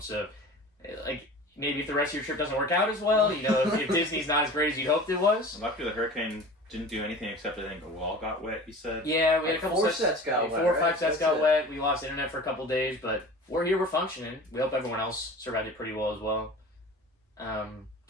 So, like, maybe if the rest of your trip doesn't work out as well, if Disney's not as great as you hoped it was. Luckily, the hurricane didn't do anything except I think a wall got wet, you said? Yeah, we had a couple 4 sets got wet. 4 or 5 right? sets That's got it. wet. We lost internet for a couple days, but we're here, we're functioning. We hope everyone else survived it pretty well as well. Do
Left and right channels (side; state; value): both; normal; correlation 0.38